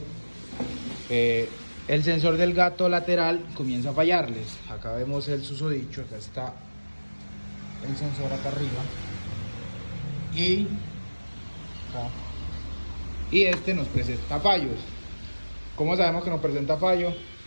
el sensor del gato lateral comienza a fallarles. Acá vemos el susodicho, acá está el sensor acá arriba y este nos presenta fallos. ¿Cómo sabemos que nos presenta fallo?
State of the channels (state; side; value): inverted; both; correlation -1.00